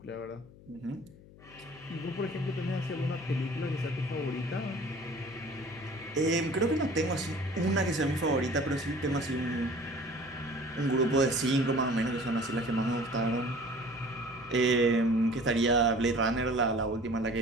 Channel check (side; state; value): left; noise; hum, 21 dB below the sound